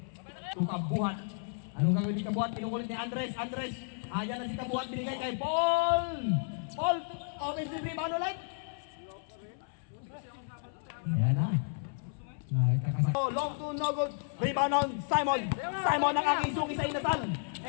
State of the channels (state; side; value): silent; right; 56 dB below the other